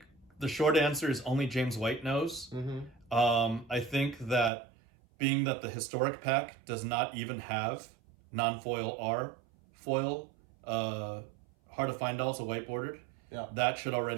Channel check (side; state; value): left; drops out; at 4.5 s